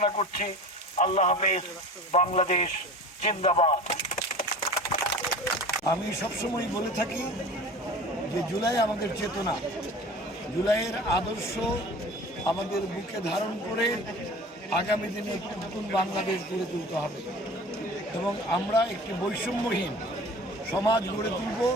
করছি। আল্লাহ হাফেজ। বাংলাদেশ জিন্দাবাদ। আমি সবসময় বলে থাকি যে জুলাই আমাদের চেতনা, জুলাইয়ের আদর্শ আমাদের বুকে ধারণ করে আগামী দিনে একটি নতুন বাংলাদেশ গড়ে তুলতে হবে এবং আমরা একটি বৈষম্যহীন সমাজ গড়ে তুলব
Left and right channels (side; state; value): both; normal; correlation 0.39